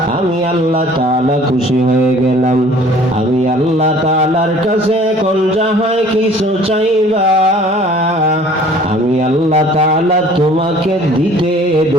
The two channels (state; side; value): normal; both; correlation 0.51